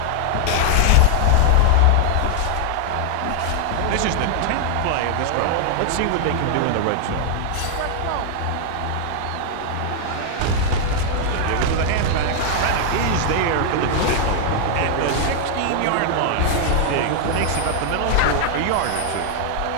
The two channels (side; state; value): both; different; correlation 0.00